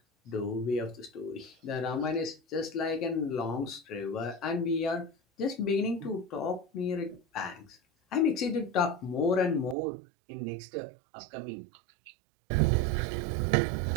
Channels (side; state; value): left; drops out; at 9.8 s